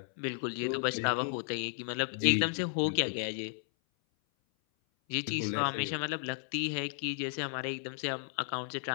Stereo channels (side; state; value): right; silent; 55 dB below the other